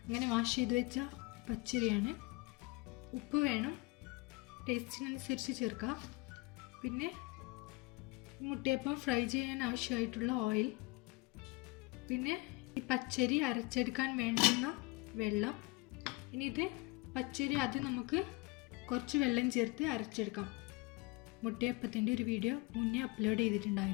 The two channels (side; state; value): right; quieter; 24.3 dB